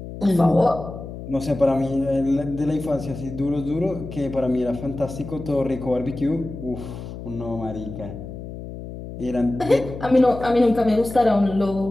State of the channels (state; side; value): noise; left; hum, 11 dB below the sound